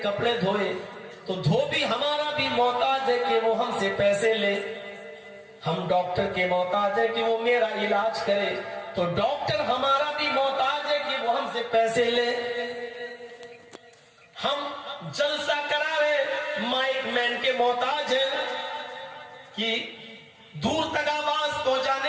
کپڑے دھوئے, تو دھوبی ہمارا بھی محتاج ہے کہ وہ ہم سے پیسے لے. ہم ڈاکٹر کے محتاج ہیں کہ وہ میرا علاج کرے, تو ڈاکٹر ہمارا بھی محتاج ہے کہ وہ ہم سے پیسے لے. ہم جلسہ کراوے, مائک مین کے محتاج ہیں کہ دور تک آواز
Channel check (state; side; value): identical; both; correlation 1.00